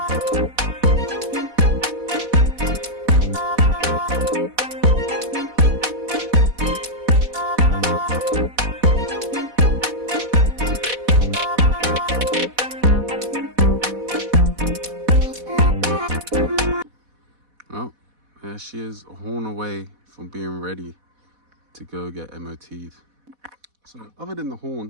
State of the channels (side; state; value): left; late; 4.1 ms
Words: Well, there she is, a horn away from being ready to go get MOT'd. So other than the